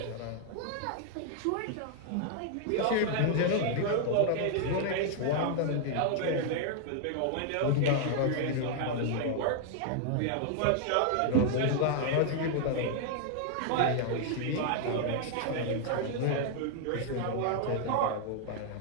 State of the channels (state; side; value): different; both; correlation 0.00